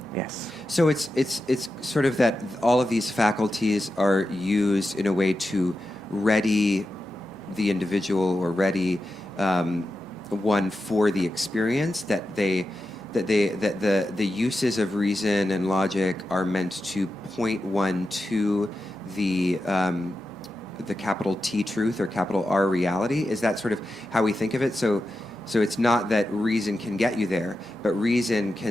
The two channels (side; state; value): right; noise; hum, 26 dB below the sound